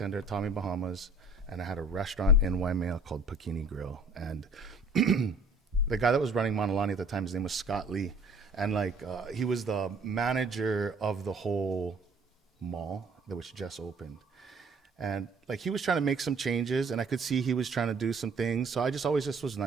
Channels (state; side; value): quieter; left; 3.1 dB